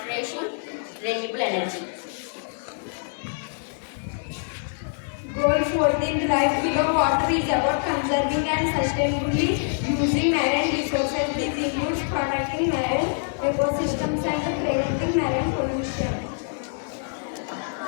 renewable energy. Goal 14, Life Below Water, is about conserving and sustainably using marine resources. This includes protecting marine ecosystems and preventing marine pollution.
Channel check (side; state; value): right; silent; digital silence